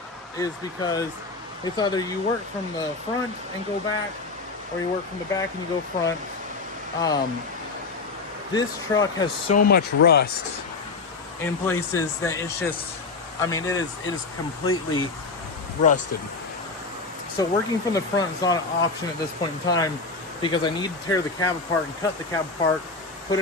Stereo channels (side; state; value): right; quieter; 4.0 dB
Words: is because it's either you work from the front and go back, or you work from the back and you go front. This truck has so much rust in places that it's just, I mean, it is completely rusted. So working from the front is not an option at this point in time, because I need to tear the cab apart and cut the cab apart, put